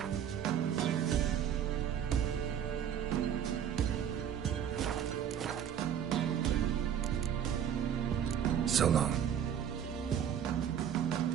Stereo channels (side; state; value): left; quieter; 9.1 dB